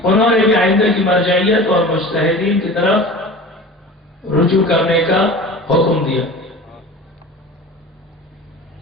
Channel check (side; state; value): both; normal; correlation 0.37